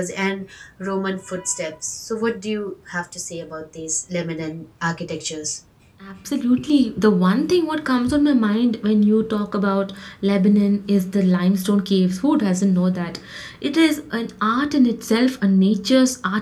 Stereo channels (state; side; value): identical; both; correlation 1.00